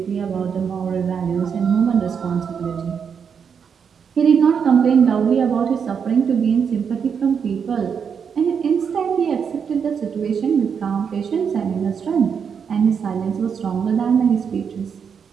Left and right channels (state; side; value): quieter; left; 6.8 dB